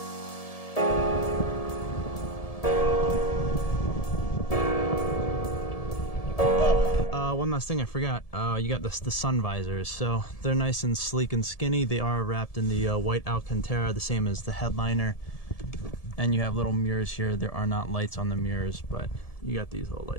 One last thing I forgot, you got the sun visors. So they're nice and sleek and skinny. They are wrapped in the white Alcantara, the same as the headliner. And you have little mirrors here. There are not lights on the mirrors, but you got these little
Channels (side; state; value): right; late; 1.7 ms